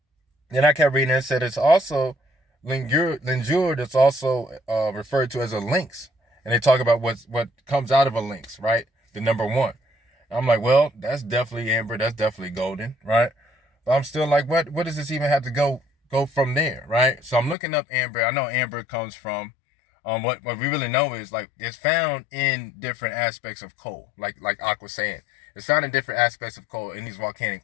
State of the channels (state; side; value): drops out; right; at 17.6 s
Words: Then I kept reading and it said it's also Lingur that's also referred to as a lynx. And they talk about what comes out of a lynx, right? The number 1. I'm like, well, that's definitely amber. That's definitely golden, right? But I'm still like, what does this even have to go from there, right? So I'm looking up amber. I know amber comes from, what we really know is like it's found in different aspects of coal, like Aqua saying. It's found in different aspects of coal in these